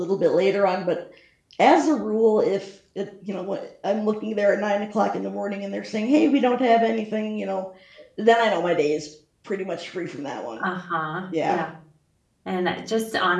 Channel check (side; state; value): both; identical; correlation 1.00